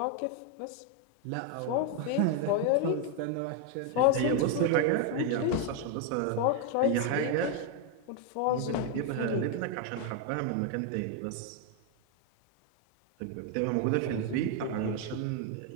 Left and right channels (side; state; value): both; different; correlation 0.01